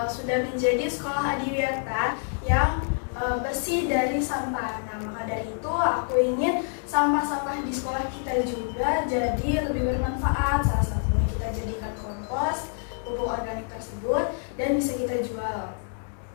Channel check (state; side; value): silent; right; 60 dB below the other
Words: sudah menjadi sekolah adiwiyata yang bersih dari sampah. Nah, maka dari itu aku ingin sampah-sampah di sekolah kita juga jadi lebih bermanfaat. Salah satunya kita jadikan kompos, pupuk organik tersebut, dan bisa kita jual.